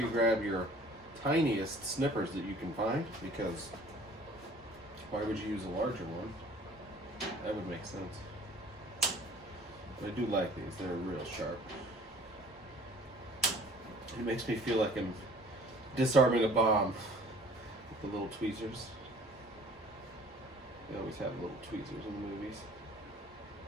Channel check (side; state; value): both; normal; correlation 0.51